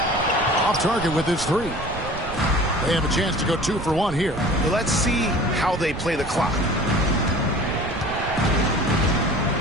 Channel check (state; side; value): noise; right; rumble, 10 dB below the sound